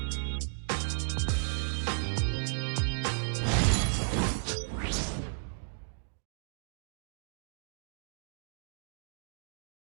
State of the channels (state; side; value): silent; left; digital silence